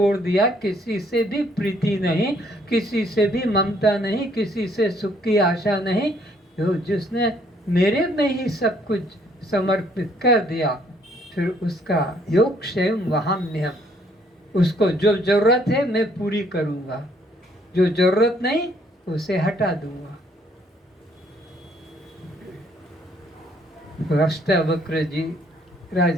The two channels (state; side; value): normal; both; correlation 0.65